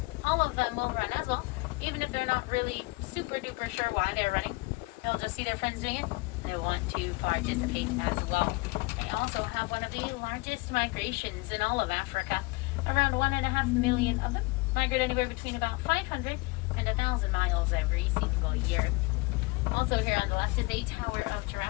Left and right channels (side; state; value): right; quieter; 24.9 dB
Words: all of them will run as well, even if they're not really super duper sure why they're running. They'll just see their friends doing it, and they want to participate as well. They also have one of the largest migrations in all of Africa. Around 1.5 million of them migrate anywhere between about 500 and 1,000 miles every single year. Also here on the left is a tower of